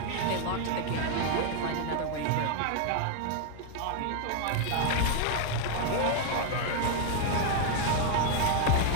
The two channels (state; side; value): different; both; correlation 0.00